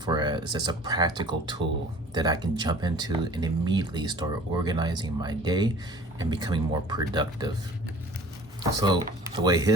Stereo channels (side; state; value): both; normal; correlation 0.47